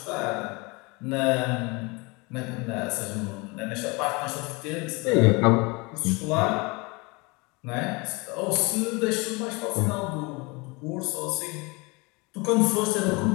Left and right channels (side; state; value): right; quieter; 27.0 dB